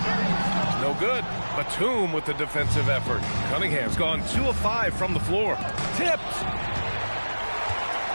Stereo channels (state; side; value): inverted; both; correlation -1.00